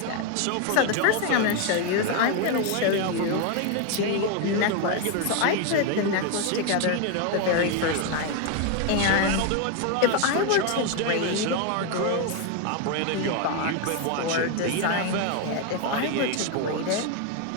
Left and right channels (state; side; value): different; both; correlation 0.01